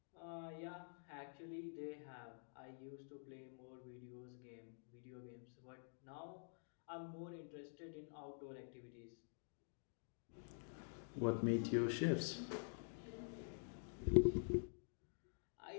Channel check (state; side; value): silent; right; digital silence